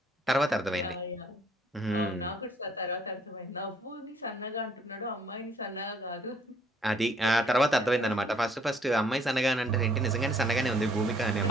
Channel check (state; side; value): normal; both; correlation 0.63